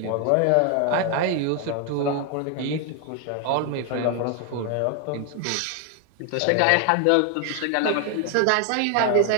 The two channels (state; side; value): different; both; correlation 0.00